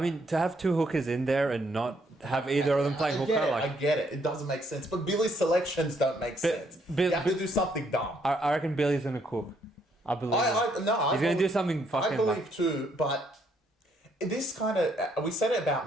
to have two hookers in there and not have either of them playing hooker, I get it. It doesn't make sense. But Billy's selections don't make sense. You have to do something dumb. I reckon Billy's going to cook. I believe he's going to do something fucking... I believe too, but this kind of... We said it about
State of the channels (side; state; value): both; normal; correlation 0.71